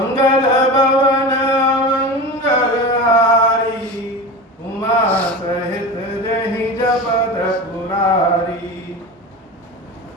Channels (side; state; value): both; normal; correlation 0.28